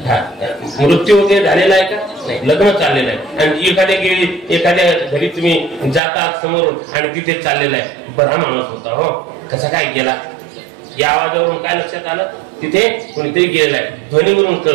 मृत्यू वगैरे झालेला आहे का? नाही, लग्न चाललेलं आहे. आणि एखाद्या घरी तुम्ही जातात समोरून आणि तिथे चाललेलं आहे. बरा माणूस होता हो, कसा काय गेला? या आवाजावरून काय लक्षात आलं? तिथे कोणीतरी गेलेला आहे. ध्वनीवरून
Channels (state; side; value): drops out; left; at 6.0 s